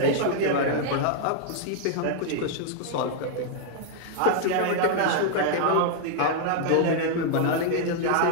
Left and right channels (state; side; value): different; both; correlation -0.01